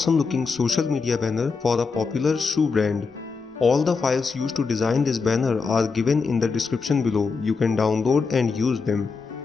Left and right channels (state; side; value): quieter; right; 4.8 dB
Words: looking social media banner for a popular shoe brand. All the files used to design this banner are given in the description below. You can download and use them.